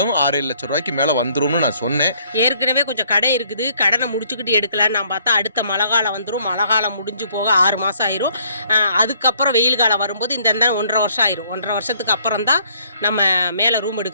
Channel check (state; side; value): inverted; both; correlation -0.64